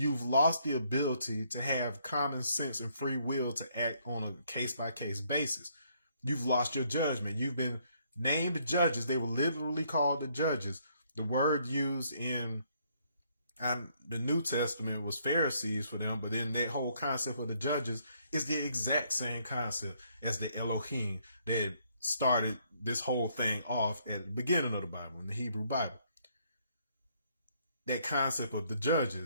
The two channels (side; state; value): both; inverted; correlation -0.69